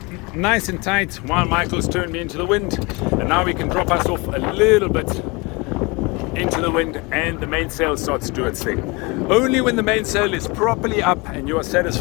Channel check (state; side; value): quieter; right; 26.8 dB